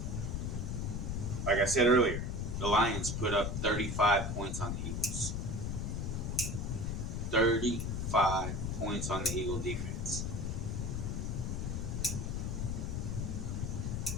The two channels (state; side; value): noise; left; rumble, 2 dB below the sound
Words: like I said earlier, the Lions put up 35 points on the Eagles. 35 points on the Eagle defense.